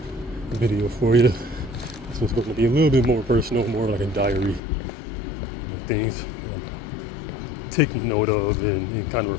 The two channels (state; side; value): drops out; right; at 4.6 s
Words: video for you. This one's going to be a little bit more personal, more like a diary. Things I'm taking note of and kind of